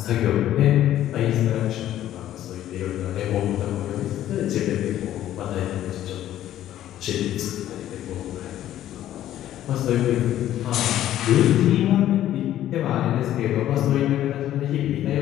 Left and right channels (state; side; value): quieter; right; 12.5 dB